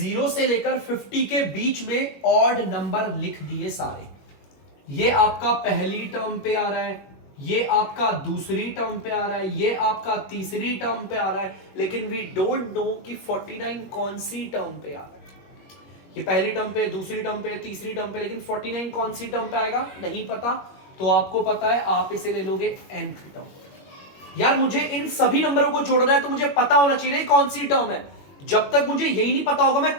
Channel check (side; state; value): right; late; 21 ms